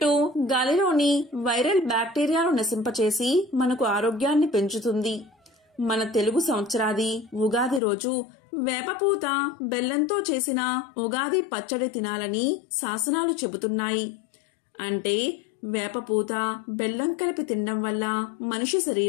గాలిలోని వైరల్ బ్యాక్టీరియాను నశింపచేసి మనకు ఆరోగ్యాన్ని పెంచుతుంది. మన తెలుగు సంవత్సరాది ఉగాది రోజు వేపపూత, బెల్లంతో చేసిన ఉగాది పచ్చడి తినాలని శాసనాలు చెబుతున్నాయి. అంటే వేపపూత, బెల్లం కలిపి తినడం వల్ల మనిషి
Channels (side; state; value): right; drops out; at 7.8 s